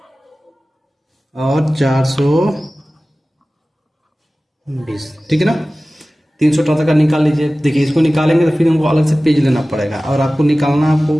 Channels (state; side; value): normal; both; correlation 0.97